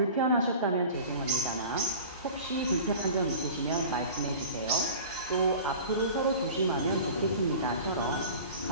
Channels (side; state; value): both; inverted; correlation -0.39